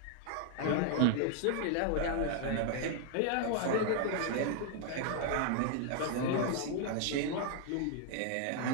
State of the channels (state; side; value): different; both; correlation 0.00